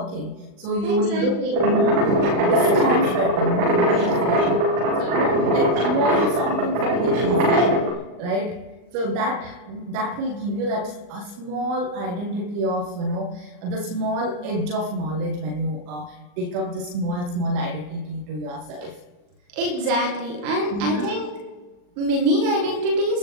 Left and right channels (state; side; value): late; left; 40 ms